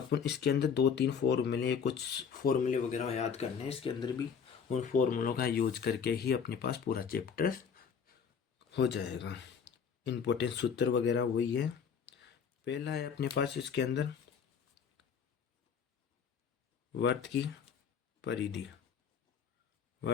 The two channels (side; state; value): right; quieter; 6.8 dB